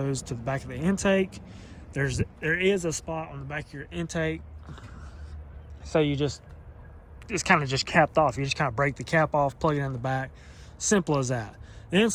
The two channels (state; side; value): identical; both; correlation 1.00